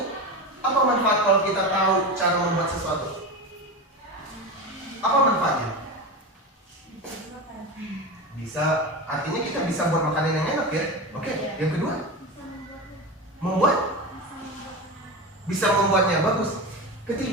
apa manfaat kalau kita tahu cara membuat sesuatu? Apa manfaatnya? Bisa, artinya kita bisa buat makanan yang enak ya. Oke, yang kedua, membuat, bisa membuatnya bagus.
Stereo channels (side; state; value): both; normal; correlation 0.23